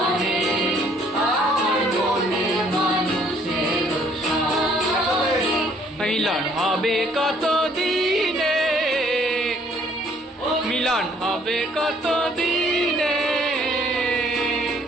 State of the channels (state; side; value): normal; both; correlation 0.62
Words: আমার মনের মানুষের সনে। মিলন হবে কত দিনে, মিলন হবে কত দিনে,